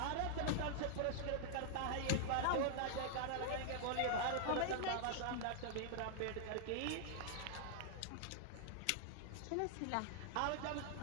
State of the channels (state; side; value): different; both; correlation -0.01